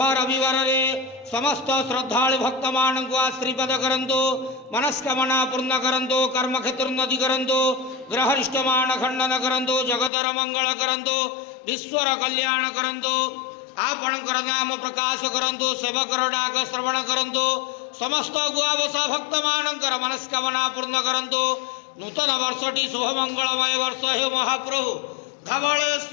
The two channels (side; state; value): right; drops out; at 10.1 s